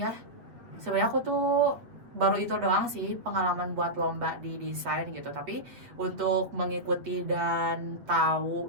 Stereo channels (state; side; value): late; left; 8.2 ms